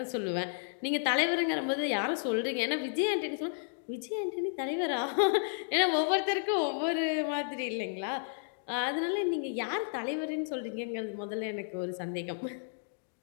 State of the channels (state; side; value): silent; right; digital silence